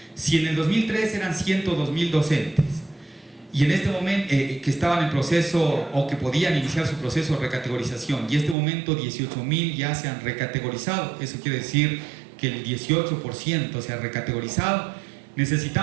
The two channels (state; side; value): drops out; left; at 8.6 s